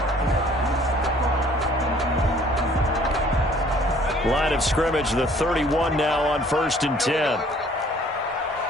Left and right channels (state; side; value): normal; both; correlation 0.56